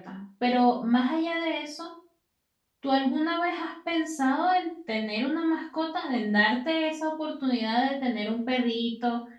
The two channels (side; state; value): both; identical; correlation 1.00